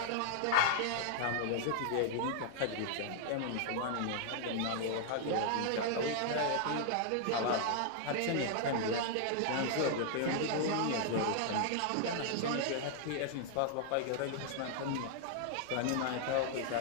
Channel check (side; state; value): both; different; correlation -0.01